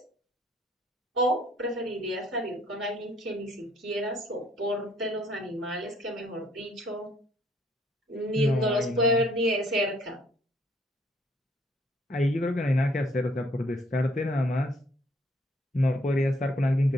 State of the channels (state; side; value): normal; both; correlation 0.64